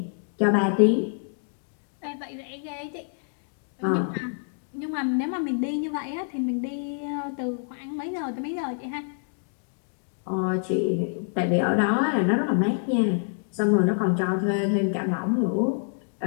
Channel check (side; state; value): right; silent; digital silence